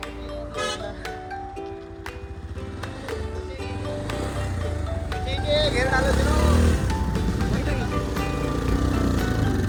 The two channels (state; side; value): identical; both; correlation 1.00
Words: घेर डालो तिनो.